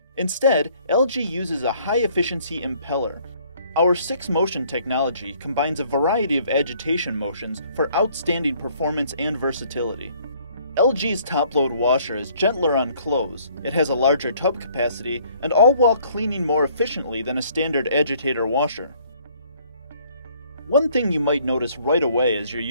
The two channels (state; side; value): inverted; both; correlation -0.61